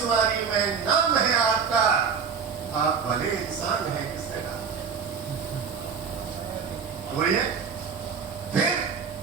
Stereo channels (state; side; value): quieter; left; 6.2 dB